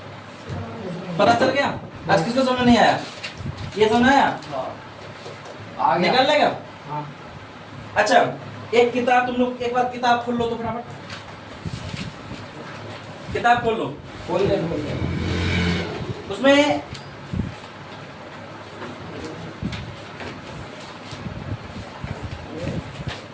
पता चल गया? आज किसको समझ नहीं आया? ये समझ आया? आ गया। निकल लेगा? हाँ। अच्छा एक किताब तुम लोग एक बार किताब खोल लो तो फटाफट किताब खोल लो। खोल दे। उसमें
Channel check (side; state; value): both; identical; correlation 1.00